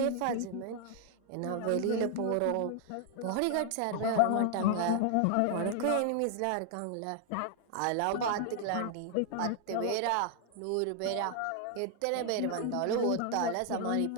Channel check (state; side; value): different; both; correlation 0.00